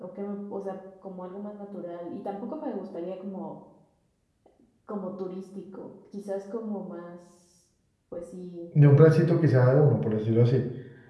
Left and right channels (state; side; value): identical; both; correlation 1.00